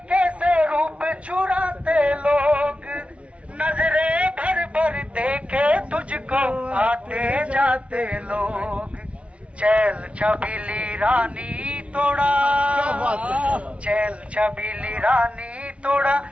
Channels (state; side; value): late; left; 0.062 ms